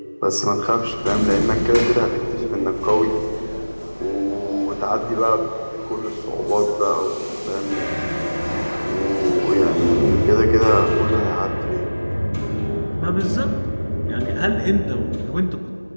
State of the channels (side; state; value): both; inverted; correlation -1.00